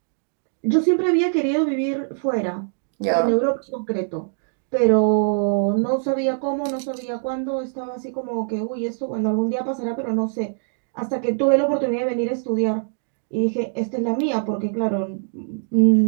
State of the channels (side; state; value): left; silent; digital silence